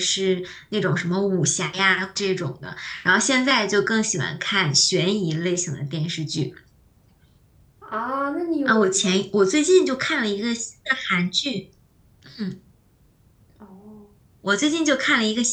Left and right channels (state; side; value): identical; both; correlation 1.00